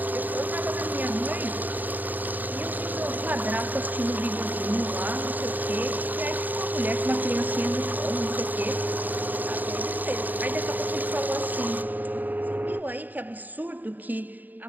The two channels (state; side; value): late; left; 0.086 ms